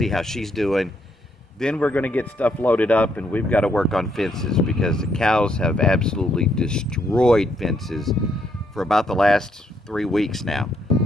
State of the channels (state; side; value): normal; both; correlation 0.74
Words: how she's doing. Then we're going to get stuff loaded up, and we've got to work on fences because the cows have absolutely destroyed fences for about the last 3 weeks now.